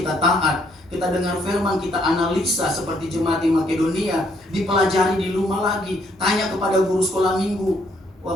taat, kita dengar firman, kita analisa seperti jemaat di Makedonia, dipelajari di rumah lagi, tanya kepada guru sekolah minggu. Wah,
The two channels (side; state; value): both; normal; correlation 0.70